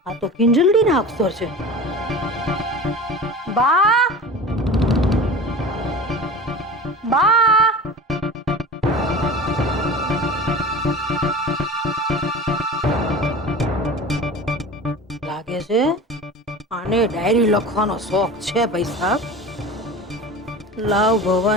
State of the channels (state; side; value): normal; both; correlation 0.35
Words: આ તો કિંજલડીના અક્ષર છે. બા બા લાગે છે આને ડાયરી લખવાનો શોખ છે ભાઈ સાહેબ. લાવ